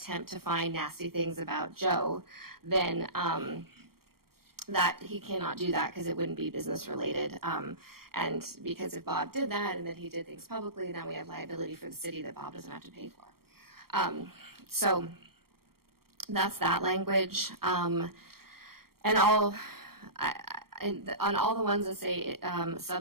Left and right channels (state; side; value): late; left; 0.94 ms